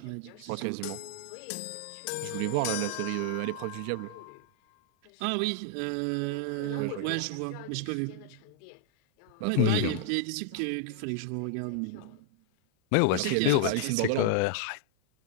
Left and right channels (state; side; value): different; both; correlation 0.00